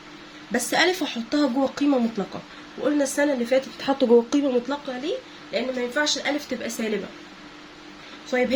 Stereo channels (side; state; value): both; identical; correlation 1.00